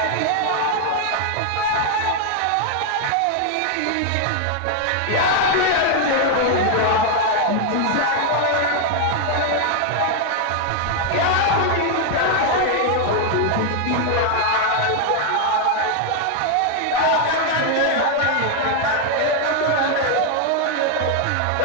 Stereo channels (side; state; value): both; different; correlation 0.00